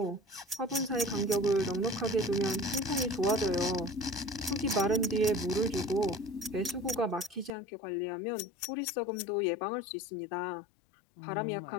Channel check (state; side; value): drops out; right; at 7.5 s